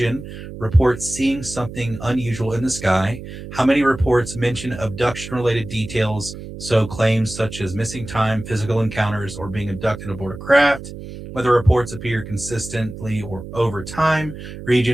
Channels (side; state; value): right; noise; hum, 12 dB below the sound